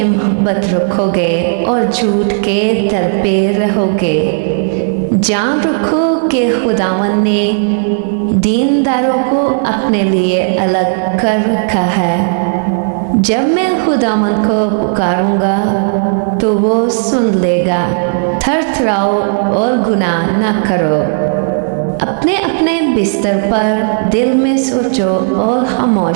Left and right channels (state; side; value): silent; left; digital silence